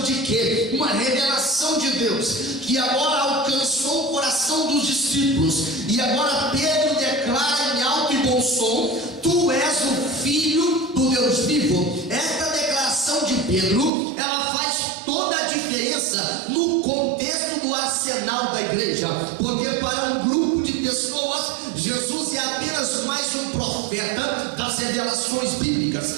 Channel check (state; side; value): drops out; left; at 13.9 s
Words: de quê? Uma revelação de Deus, que agora alcançou o coração dos discípulos, e agora Pedro declara em alto e bom som: tu és o Filho do Deus vivo. Esta declaração de Pedro, ela faz toda a diferença no contexto do arsenal da igreja, porque para um grupo de pessoas, Jesus é apenas mais um profeta das revelações